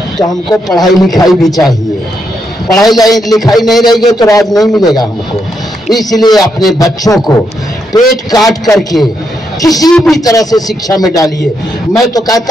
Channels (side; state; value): both; normal; correlation 0.80